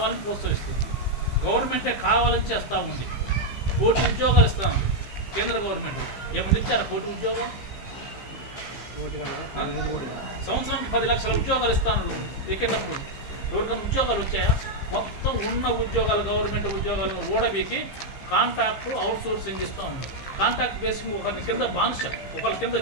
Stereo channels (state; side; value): late; right; 15 ms